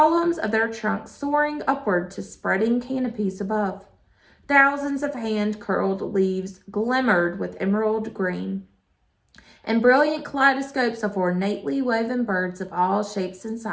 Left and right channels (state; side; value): identical; both; correlation 1.00